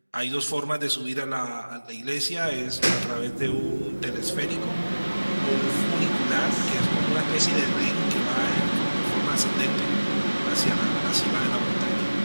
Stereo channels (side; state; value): both; inverted; correlation -1.00